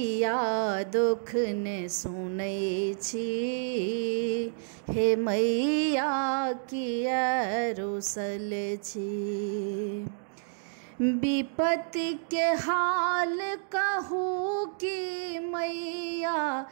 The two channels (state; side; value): silent; left; digital silence